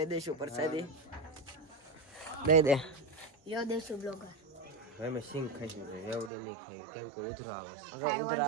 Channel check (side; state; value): left; drops out; at 6.3 s